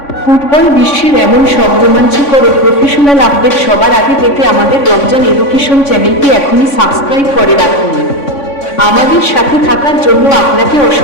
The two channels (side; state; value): right; late; 3.5 ms